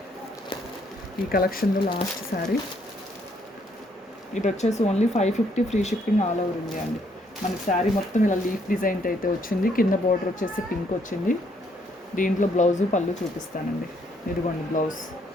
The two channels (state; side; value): normal; both; correlation 0.70